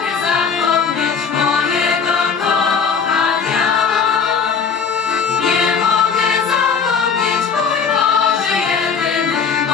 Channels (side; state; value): right; quieter; 6.1 dB